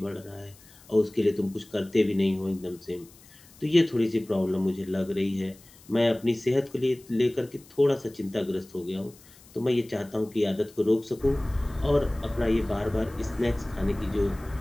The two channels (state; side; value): noise; left; hiss, 25 dB below the sound